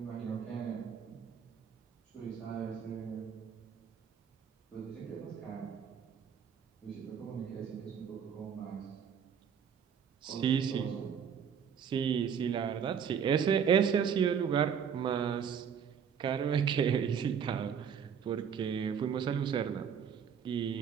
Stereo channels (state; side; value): quieter; left; 7.5 dB